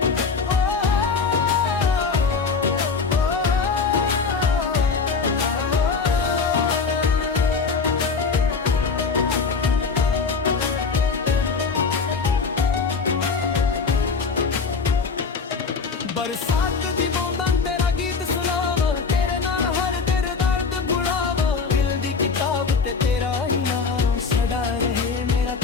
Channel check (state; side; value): quieter; right; 5.0 dB